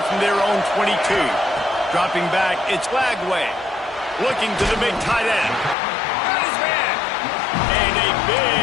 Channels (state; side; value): drops out; right; at 5.8 s